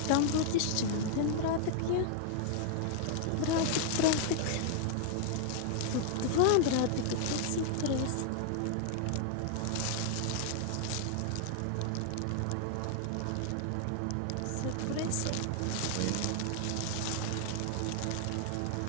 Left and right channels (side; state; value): both; different; correlation -0.01